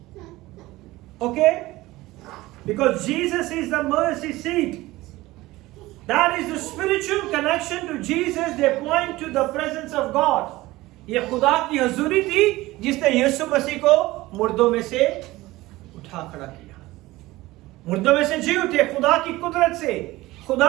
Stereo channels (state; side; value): quieter; left; 18.7 dB